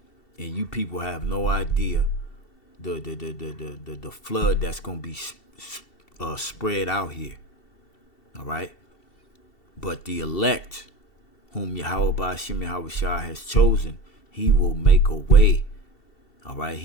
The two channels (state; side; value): late; right; 2.7 ms